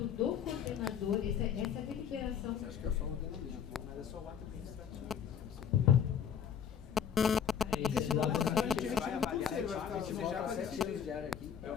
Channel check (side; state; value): right; quieter; 8.1 dB